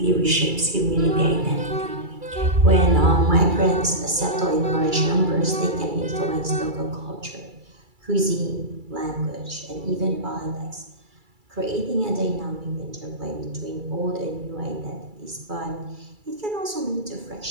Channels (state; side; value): late; left; 2.3 ms